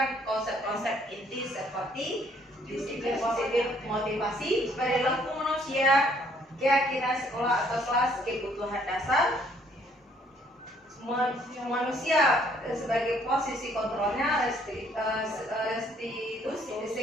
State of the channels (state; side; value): normal; both; correlation 0.65